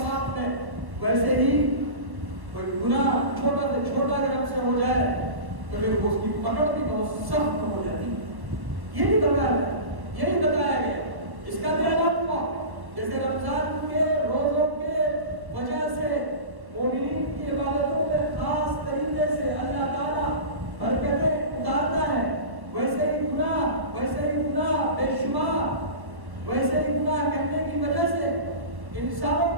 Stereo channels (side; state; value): left; late; 1.2 ms